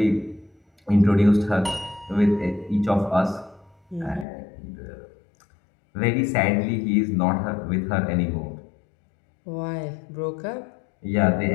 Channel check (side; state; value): right; drops out; at 4.2 s